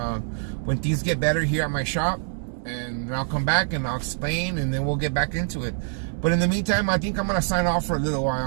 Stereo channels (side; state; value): left; silent; digital silence